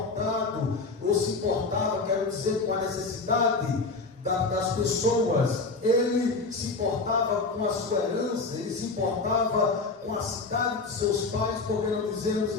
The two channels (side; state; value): right; quieter; 3.8 dB